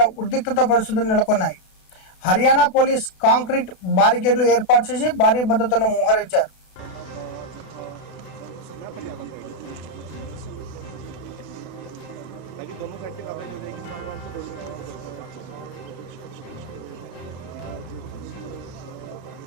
ఉద్రిక్తత పరిస్థితులు నెలకొన్నాయి. హర్యానా పోలీస్ కాంక్రీట్ బారికేడ్లు ఏర్పాటు చేసి భారీ భద్రతను మోహరించారు.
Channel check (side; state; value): right; late; 32 ms